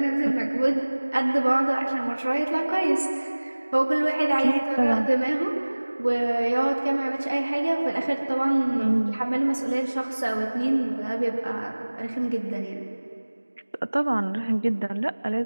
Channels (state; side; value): inverted; both; correlation -1.00